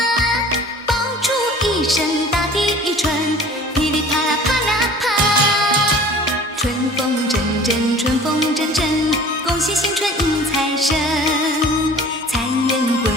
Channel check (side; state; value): both; normal; correlation 0.45